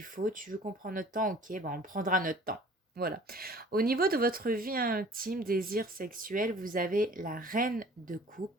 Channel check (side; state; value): both; normal; correlation 0.49